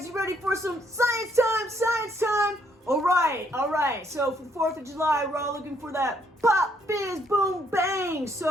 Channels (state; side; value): normal; both; correlation 0.70